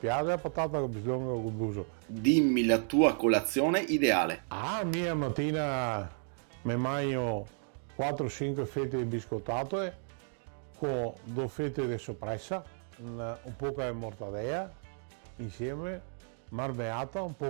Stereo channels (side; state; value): left; silent; 56 dB below the other